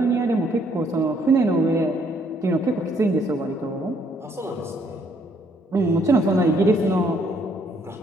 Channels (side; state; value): both; normal; correlation 0.68